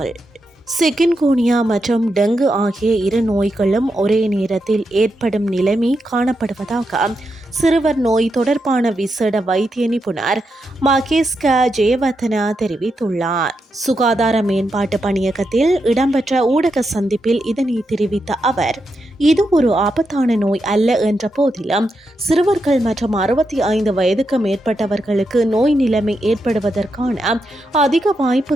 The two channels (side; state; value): both; normal; correlation 0.85